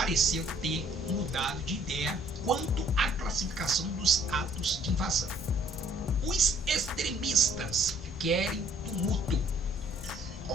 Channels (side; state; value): both; normal; correlation 0.61